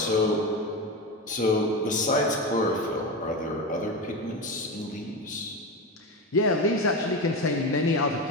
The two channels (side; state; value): both; normal; correlation 0.19